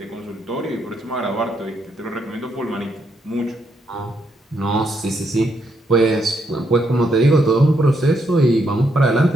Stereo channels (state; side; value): normal; both; correlation 0.77